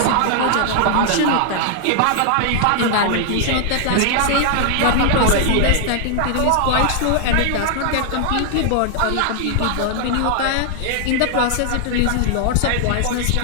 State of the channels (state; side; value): different; both; correlation 0.00